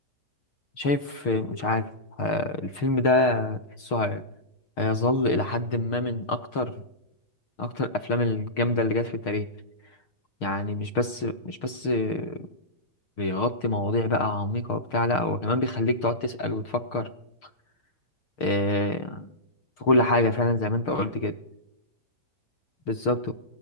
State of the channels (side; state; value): right; late; 6.5 ms